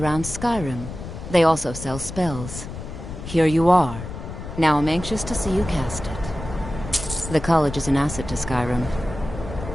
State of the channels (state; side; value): noise; left; rumble, 10 dB below the sound